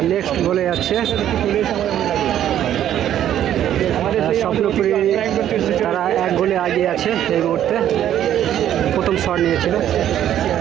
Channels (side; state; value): left; quieter; 11.1 dB